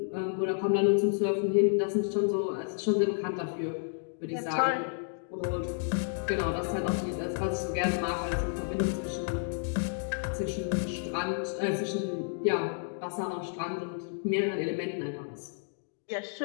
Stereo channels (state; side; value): silent; right; digital silence